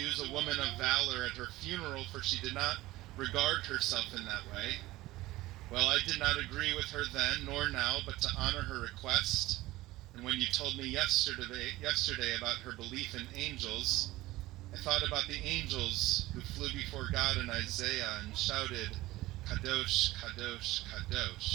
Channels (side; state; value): left; quieter; 17.9 dB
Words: a woman of valor at her funeral, for she did not regard herself in that way. Well, I did not agree with her then, nor now, but to honor her request. And when you told me yesterday about her belief in angels, I thought about the angels who flew before God in Isaiah and shouted, Kadosh, Kadosh,